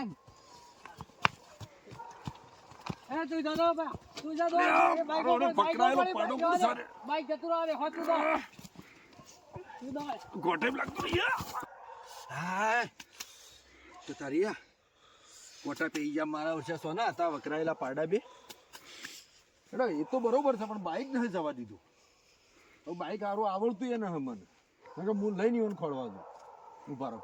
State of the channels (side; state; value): both; identical; correlation 1.00